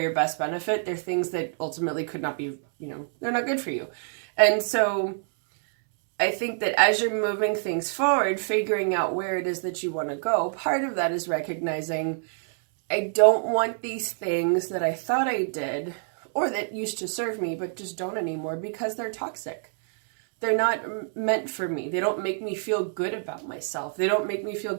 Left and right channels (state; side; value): silent; left; 61 dB below the other